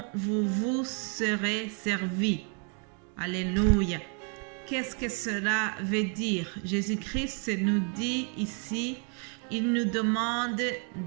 vous vous serez servi. » Alléluia. Qu'est-ce que cela veut dire? Jésus-Christ nous dit ici, il nous demande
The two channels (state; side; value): quieter; left; 39.9 dB